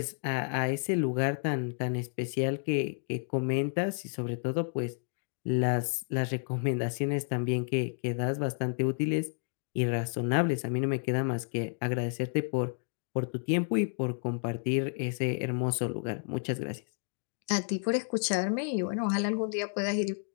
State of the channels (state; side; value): silent; right; digital silence